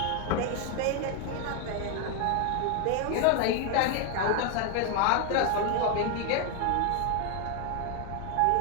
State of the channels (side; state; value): both; different; correlation 0.01